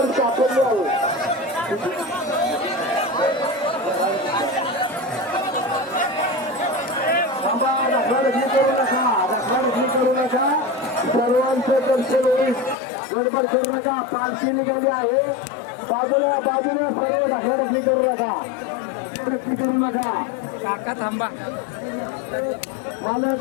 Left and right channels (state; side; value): drops out; right; at 12.8 s